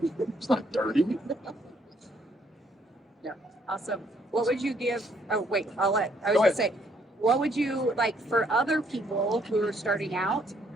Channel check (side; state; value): both; normal; correlation 0.68